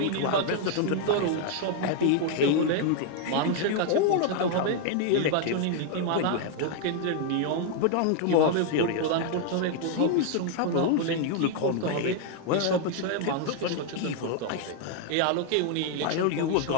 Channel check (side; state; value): both; different; correlation 0.00